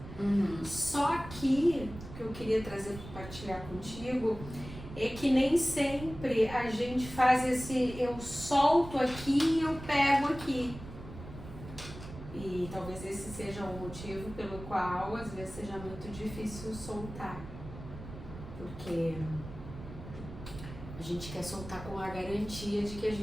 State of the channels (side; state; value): right; noise; rumble, 13 dB below the sound